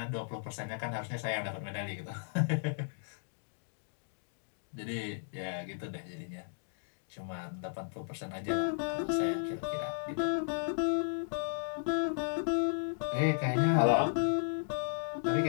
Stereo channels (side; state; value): right; silent; digital silence